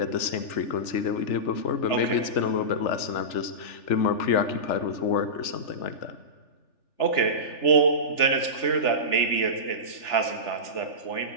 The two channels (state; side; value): late; right; 3.4 ms